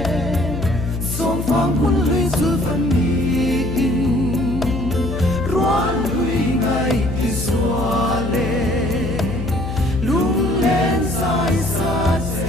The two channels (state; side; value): noise; left; hum, 5 dB below the sound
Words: song phong quân lưới du phần in roan lưới ngày khi xóa lệ lung lên dài xa